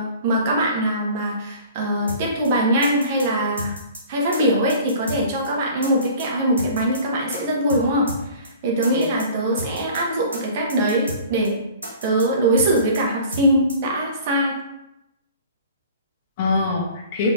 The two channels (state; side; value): inverted; both; correlation -0.46